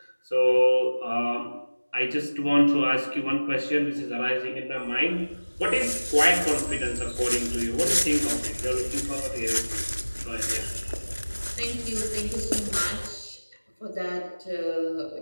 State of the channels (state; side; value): inverted; both; correlation -1.00